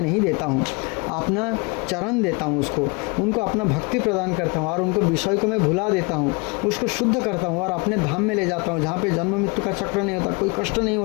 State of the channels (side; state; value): right; quieter; 29.9 dB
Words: नहीं देता हूँ, अपना चरण देता हूँ, उनको अपना भक्ति प्रदान करता हूँ और उनको विषय को मैं भुला देता हूँ, उसको शुद्ध करता हूँ और अपने धाम में ले जाता हूँ जहाँ पे जन्म मृत्यु का चक्र नहीं होता, कोई कष्ट नहीं